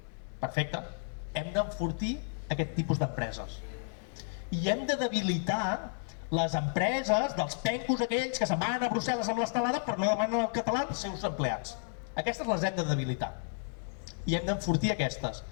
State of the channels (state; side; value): silent; right; digital silence